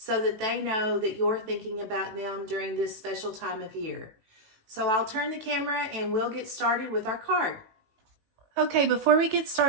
that they know that you're thinking about them during this special time of year. So I'll turn the camera and we'll get started with our card. Okay, before we get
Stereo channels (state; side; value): late; left; 18 ms